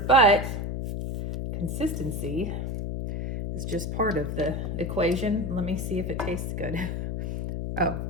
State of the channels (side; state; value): left; noise; hum, 3 dB below the sound